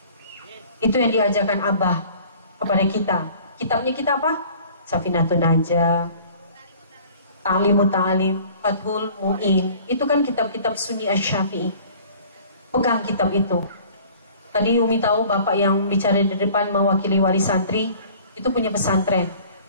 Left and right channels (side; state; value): both; inverted; correlation -0.49